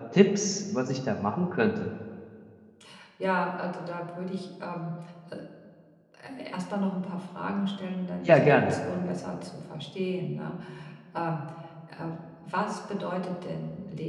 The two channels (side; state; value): both; identical; correlation 1.00